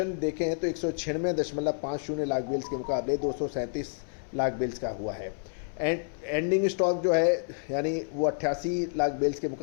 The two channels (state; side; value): silent; right; 58 dB below the other